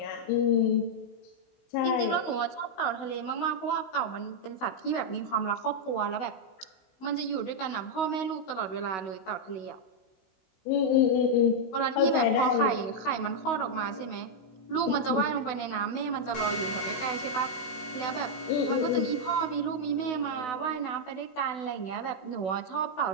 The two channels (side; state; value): right; late; 16 ms